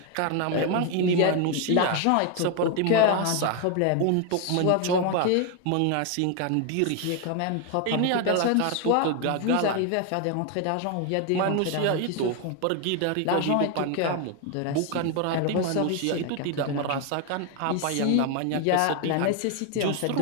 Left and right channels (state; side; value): different; both; correlation 0.01